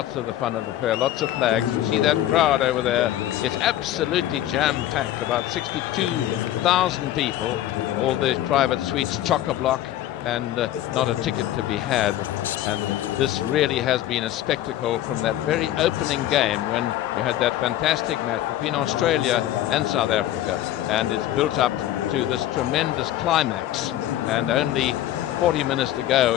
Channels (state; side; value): quieter; right; 13.2 dB